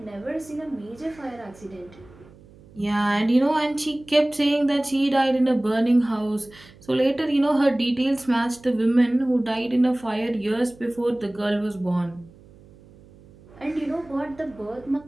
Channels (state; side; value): noise; right; hum, 24 dB below the sound